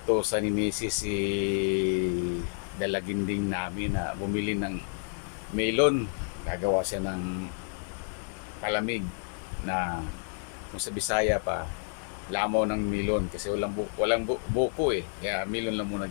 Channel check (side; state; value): right; silent; 57 dB below the other